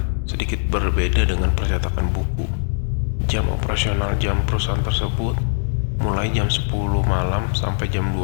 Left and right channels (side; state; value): right; silent; digital silence